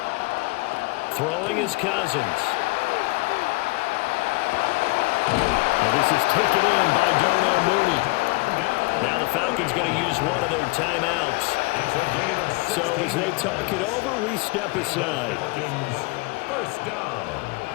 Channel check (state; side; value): quieter; right; 26.1 dB